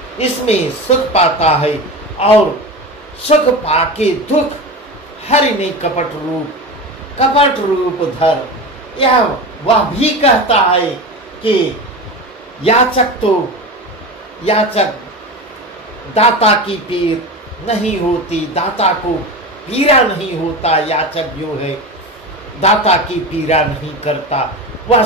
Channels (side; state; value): both; normal; correlation 0.26